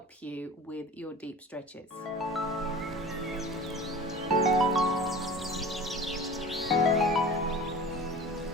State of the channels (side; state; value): both; normal; correlation 0.38